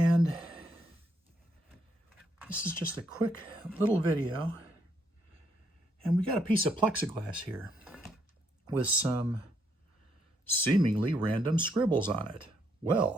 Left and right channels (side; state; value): both; normal; correlation 0.73